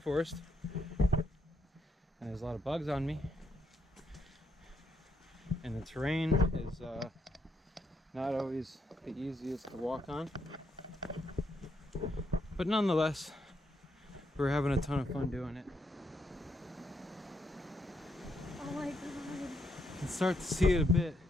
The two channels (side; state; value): both; normal; correlation 0.77